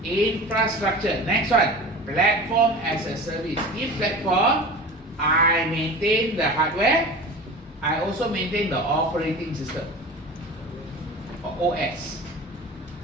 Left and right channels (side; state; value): both; normal; correlation 0.35